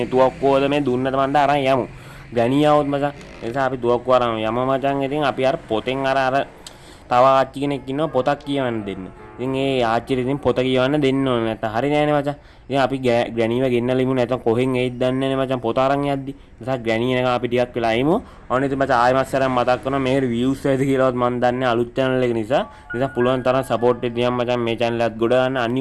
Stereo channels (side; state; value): both; identical; correlation 1.00